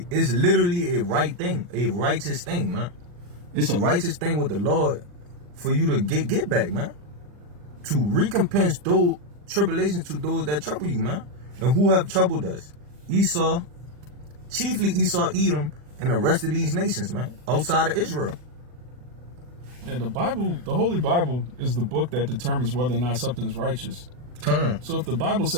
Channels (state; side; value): late; left; 40 ms